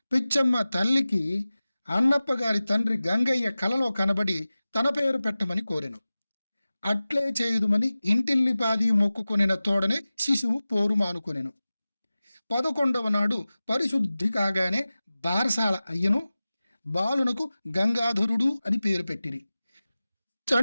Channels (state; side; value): inverted; both; correlation -0.97